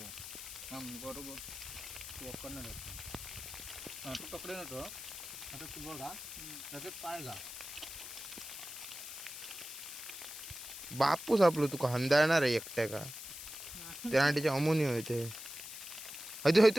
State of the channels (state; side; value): noise; left; hiss, 10 dB below the sound